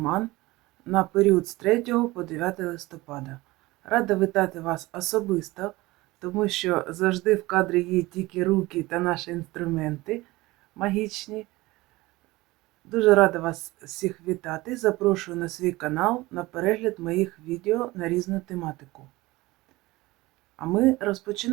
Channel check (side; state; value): left; quieter; 20.1 dB